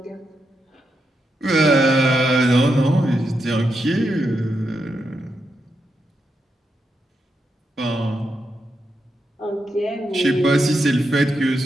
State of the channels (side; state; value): both; normal; correlation 0.84